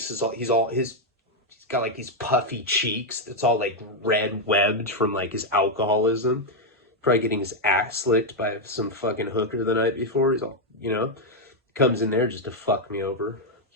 is he's got like these puffy cheeks. It's all like red webbed from like his alcoholism. Probably getting his ass licked by some fucking hooker the night before. He's all, you know, comes in there just to fuck me over.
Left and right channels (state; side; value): normal; both; correlation 0.01